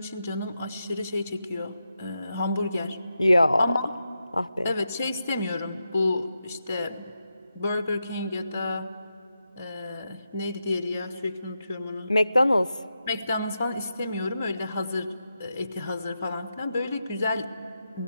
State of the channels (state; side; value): inverted; both; correlation -0.87